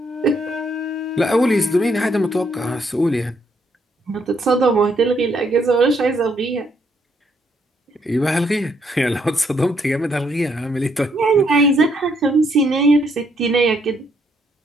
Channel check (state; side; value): normal; both; correlation 0.72